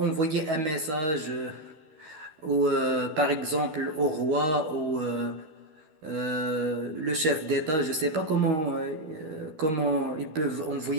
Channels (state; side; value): late; left; 12 ms